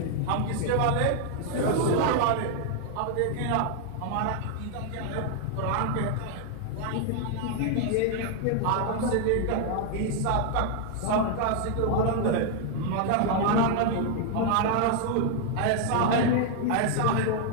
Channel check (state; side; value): different; both; correlation 0.00